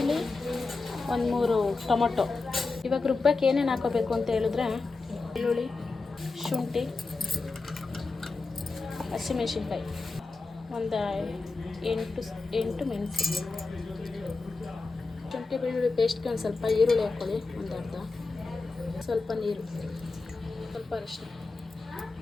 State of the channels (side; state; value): right; quieter; 3.8 dB